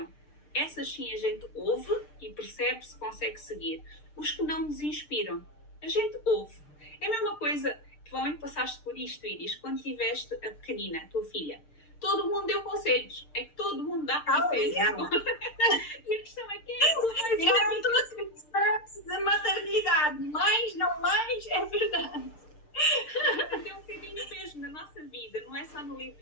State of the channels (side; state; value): right; late; 6.6 ms